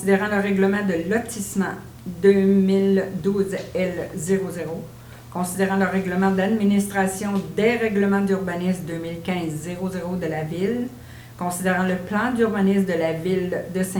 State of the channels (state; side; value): identical; both; correlation 1.00